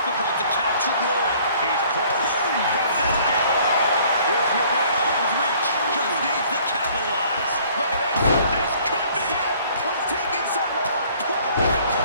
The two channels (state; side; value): inverted; both; correlation -0.57